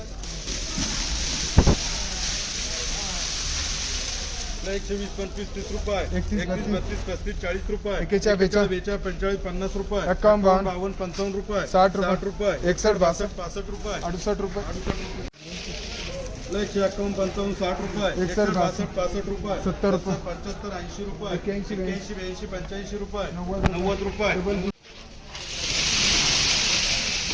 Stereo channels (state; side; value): identical; both; correlation 1.00